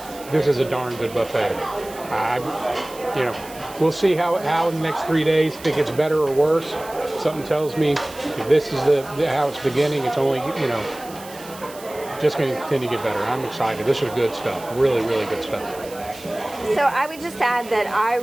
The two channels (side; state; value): right; noise; hiss, 18 dB below the sound